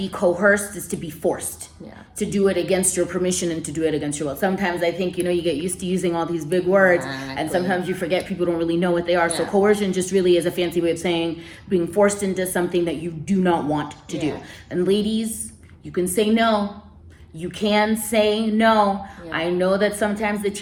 coerced is to be forced. Yeah. To do it against your permission and to do it against your will. Sometimes I think, you know, you get used to using all these big words, and sometimes you forget people don't really know what they are. So coercion just really is a fancy way of saying being forced into something that you do not want to do. And ladies, you can say no. You can say no. I know that sometimes the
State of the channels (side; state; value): both; identical; correlation 1.00